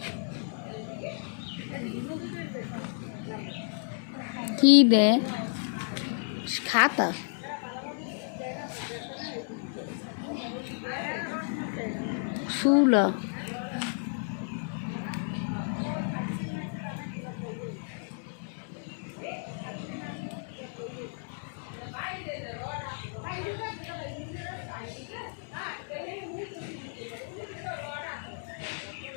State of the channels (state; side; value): silent; right; 57 dB below the other